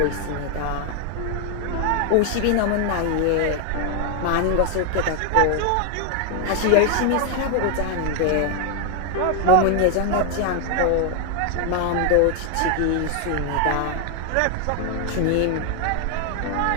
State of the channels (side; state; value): both; different; correlation 0.00